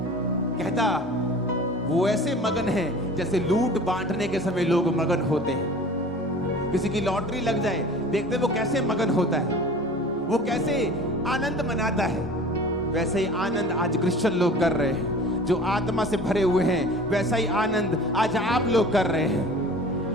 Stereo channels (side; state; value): both; normal; correlation 0.42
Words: कहता वो ऐसे मगन हैं जैसे लूट बांटने के समय लोग मगन होते हैं। किसी की लॉटरी लग जाए, देखते वो कैसे मगन होता है, वो कैसे आनंद मनाता है। वैसे ही आनंद आज क्रिश्चियन लोग कर रहे हैं, जो आत्मा से भरे हुए हैं। वैसा ही आनंद आज आप लोग कर रहे हैं।